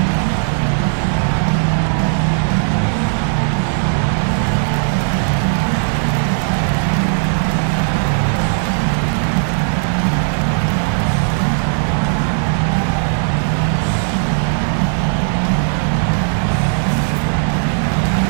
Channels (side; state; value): left; silent; digital silence